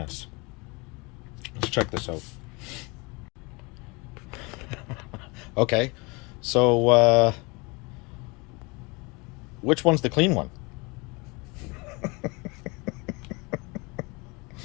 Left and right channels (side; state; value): right; quieter; 27.4 dB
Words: Let's check this out. Okay, so which one's the clean one?